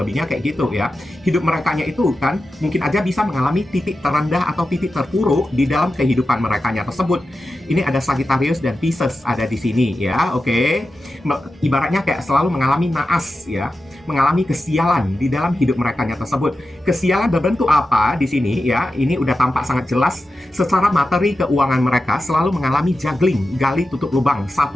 lebihnya kayak gitu ya. Hidup merekanya itu kan mungkin aja bisa mengalami titik terendah atau titik terpuruk di dalam kehidupan merekanya tersebut. Ini ada Sagittarius dan Pisces ada di sini ya. Oke. Ibaratnya kayak selalu mengalami naas ya, mengalami kesialan di dalam hidup merekanya tersebut. Kesialan berbentuk apa di sini ya? Ini udah tampak sangat jelas. Secara materi keuangan mereka selalu mengalami juggling, gali tutup lubang,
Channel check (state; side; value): normal; both; correlation 0.92